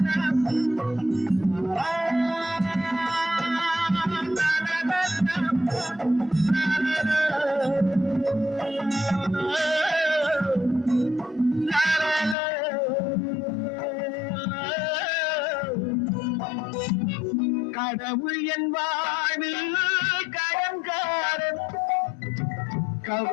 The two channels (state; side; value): drops out; right; at 12.4 s